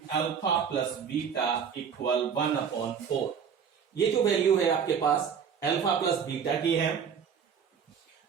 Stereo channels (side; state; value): left; quieter; 7.1 dB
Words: alpha plus beta equal 1/4। ये जो वैल्यू है आपके पास अल्फा प्लस बीटा की है।